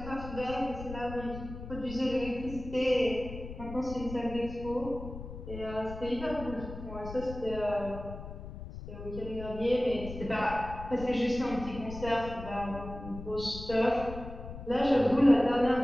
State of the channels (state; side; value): noise; left; rumble, 11 dB below the sound